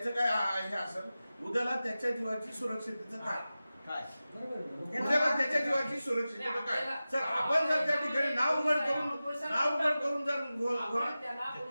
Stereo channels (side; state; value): both; inverted; correlation -0.95